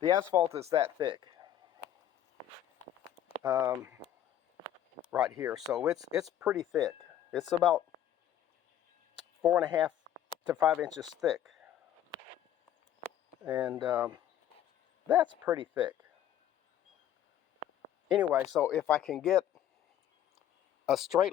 asphalt is that thick right here, so it's pretty thick. It's about 4.5 to 5 inches thick, and that's pretty thick. Anyway, so if I can get a straight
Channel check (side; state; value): right; quieter; 11.0 dB